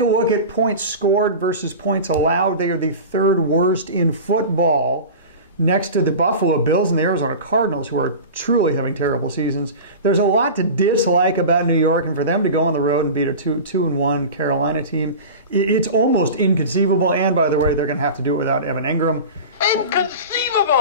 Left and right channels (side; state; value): both; inverted; correlation -0.32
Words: look at points scored versus points allowed, they are the 3rd worst in football, next to the Buffalo Bills and the Arizona Cardinals, who are truly having terrible seasons. There's a lot to dislike about New York, and for them to go on the road and beat a 2-1 Carolina team, it's almost inconceivable. And by the way, they're going to have to do it without Evan Ingram.